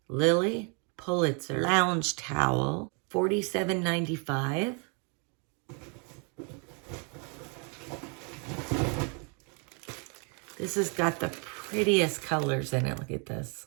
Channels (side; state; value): left; quieter; 36.3 dB